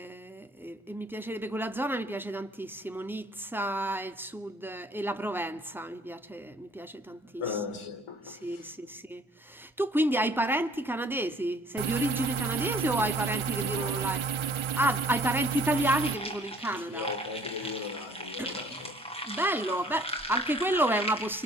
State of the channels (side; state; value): both; normal; correlation 0.56